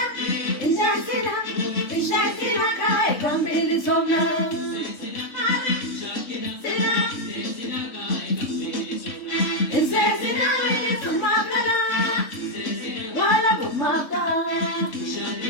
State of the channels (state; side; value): late; right; 3.6 ms